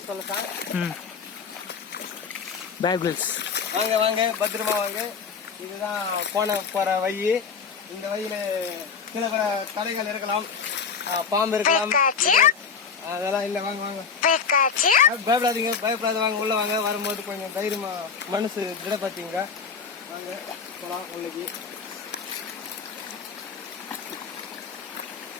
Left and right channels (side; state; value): right; quieter; 5.8 dB